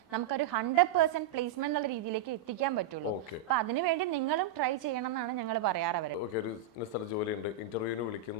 നമുക്കൊരു 100% പ്ലേസ്മെന്റ് എന്നുള്ള രീതിയിലേക്ക് എത്തിക്കാൻ പറ്റുള്ളൂ. അപ്പൊ അതിനുവേണ്ടി നിങ്ങളും ട്രൈ ചെയ്യണം എന്നാണ് ഞങ്ങൾ പറയാറ് അവര്. ഒരു സ്ഥലത്ത് ജോലിയുണ്ട്, ഇന്റർവ്യൂവിന്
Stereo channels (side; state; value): left; quieter; 7.8 dB